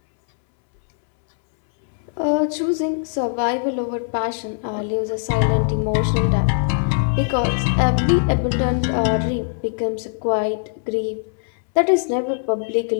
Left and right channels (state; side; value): silent; right; 65 dB below the other